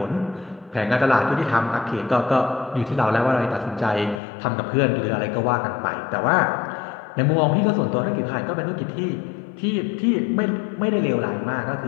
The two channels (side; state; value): right; drops out; at 4.2 s